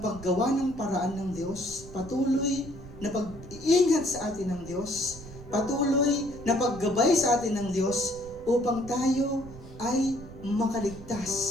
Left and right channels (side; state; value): right; noise; rumble, 16 dB below the sound